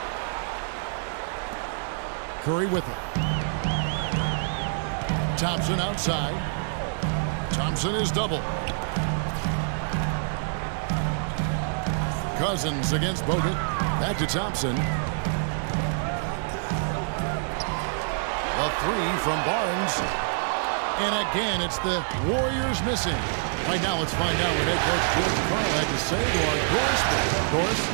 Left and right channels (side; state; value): left; silent; digital silence